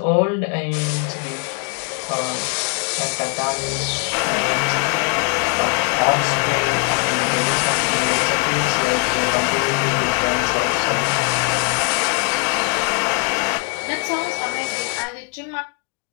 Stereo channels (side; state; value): right; quieter; 32.4 dB